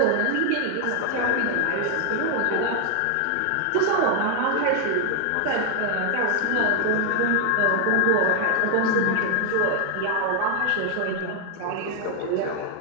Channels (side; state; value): both; different; correlation 0.00